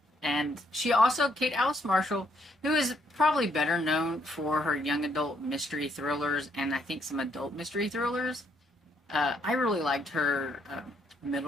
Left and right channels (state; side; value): normal; both; correlation 0.72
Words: And she also, Kate Alice Marshall, who is probably better known for her young adult mystery thrillers and I think some adult mystery thrillers. I really liked her